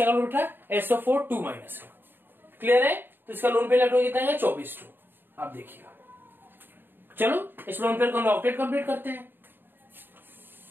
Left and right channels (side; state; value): left; late; 0.097 ms